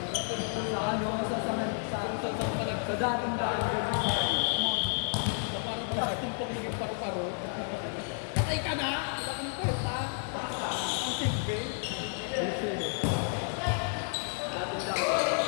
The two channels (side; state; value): right; silent; 57 dB below the other